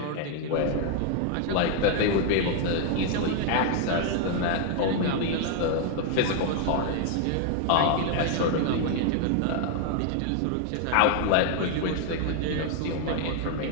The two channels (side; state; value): both; different; correlation 0.00